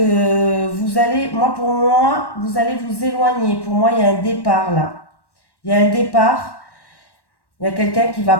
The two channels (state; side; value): late; right; 1.1 ms